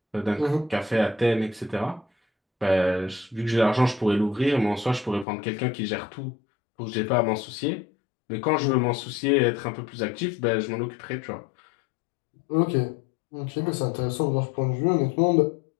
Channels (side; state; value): right; drops out; at 5.2 s